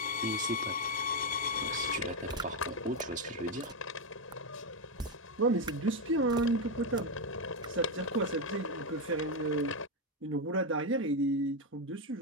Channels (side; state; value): both; normal; correlation 0.06